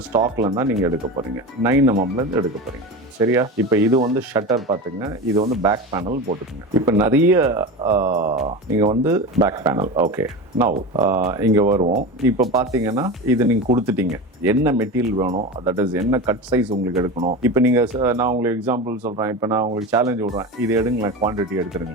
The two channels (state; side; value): normal; both; correlation 0.26